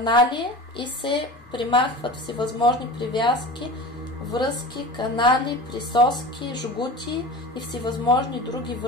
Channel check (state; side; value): normal; both; correlation 0.34